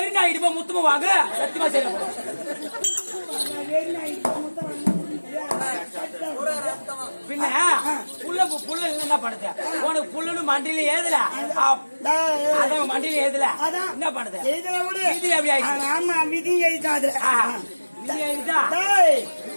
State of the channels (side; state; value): both; inverted; correlation -1.00